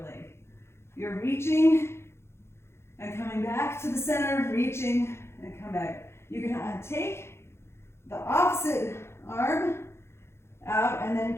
leg. You're reaching and coming back to the center, reaching and come back. You can take the opposite arm out and then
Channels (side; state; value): right; late; 0.12 ms